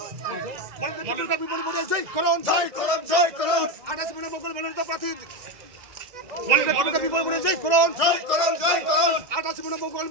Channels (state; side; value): late; left; 2.0 ms